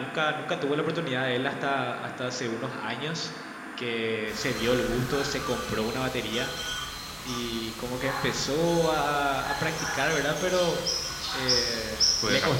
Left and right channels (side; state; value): both; identical; correlation 1.00